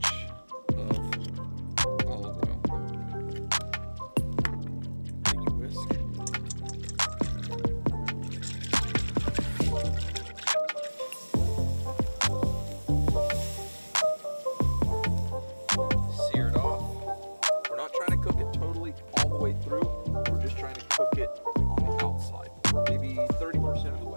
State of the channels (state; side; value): inverted; both; correlation -1.00